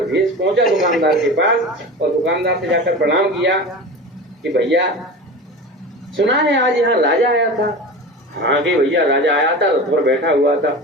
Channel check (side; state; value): both; normal; correlation 0.31